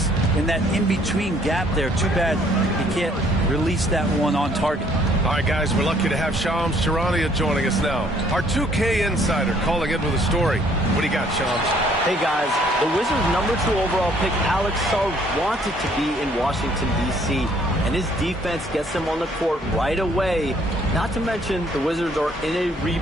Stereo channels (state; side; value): normal; both; correlation 0.62